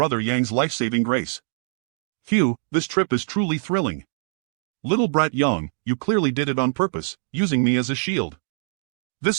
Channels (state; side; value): silent; left; digital silence